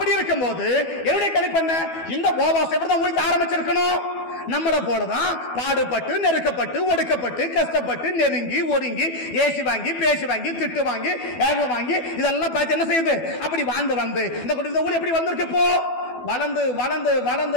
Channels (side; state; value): right; late; 12 ms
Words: இருக்கும்போது என்னுடைய கணிப்பென்ன? இந்த போவாஸ் எப்படிதான் ஊழியத்தை ஆரம்பிச்சிருக்கணும்? நம்மளை போலதான் பாடுபட்டு நெருக்கப்பட்டு ஒடுக்கப்பட்டு கஷ்டப்பட்டு நெருங்கி ஒடுங்கி ஏசி வாங்கி பேசி வாங்கி திட்டு வாங்கி ஏக வாங்கி இதெல்லாம் பார்த்து என்ன செய்யுது? அப்படி வந்து இந்த ஊழியம் எப்படி வந்திருக்கு? இப்போ வளர்ந்து